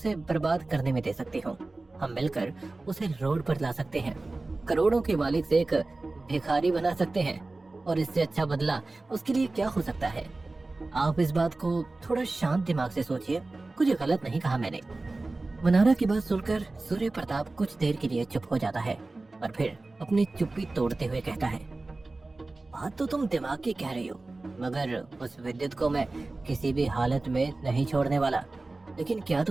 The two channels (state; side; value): quieter; left; 3.2 dB